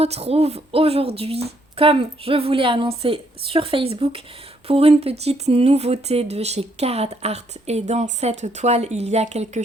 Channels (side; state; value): both; normal; correlation 0.71